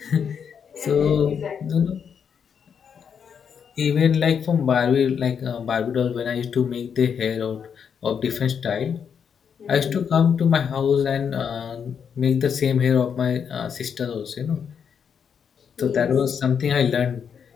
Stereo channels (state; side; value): quieter; right; 7.2 dB